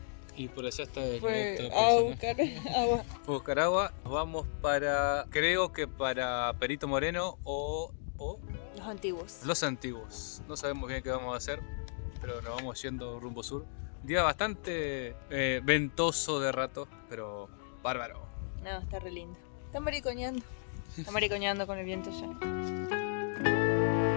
Y por allá está el Fue otro a buscar agua. Fue a buscar agua. Nos vamos para, creo que para Perito Moreno o Los antiguos. Los Antiguos. No sabemos bien qué vamos a hacer, pero nos vamos yendo rumbo sur. Un día bastante ventoso de rato, pero bárbaro. No, está re lindo. Está maricoñando. Está maricoñando con el viento ya.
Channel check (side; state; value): right; silent; digital silence